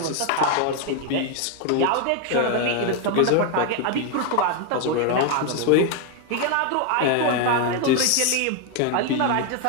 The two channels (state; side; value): different; both; correlation 0.01